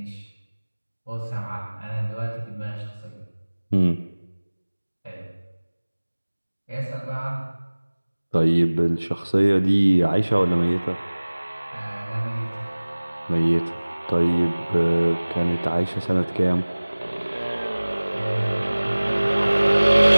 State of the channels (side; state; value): both; inverted; correlation -1.00